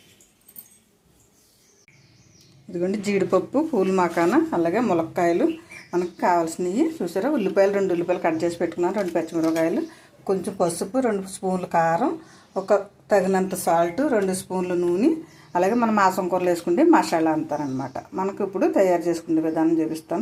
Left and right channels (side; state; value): both; identical; correlation 1.00